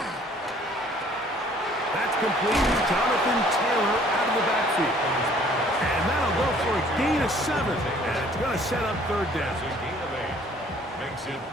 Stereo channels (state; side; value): normal; both; correlation 0.57